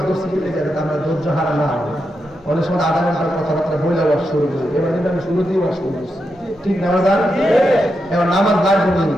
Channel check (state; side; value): normal; both; correlation 0.86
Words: করছি কি আমরা ধৈর্য হারা না হবে। অনেক সময় আধা ঘন্টার কথাবার্তা বইলে ওয়াজ শুরু করি, এবার কিন্তু আমি শুরুতেই ওয়াজ শুরু করছি, ঠিক না? এবার নামাজ লাগবে না,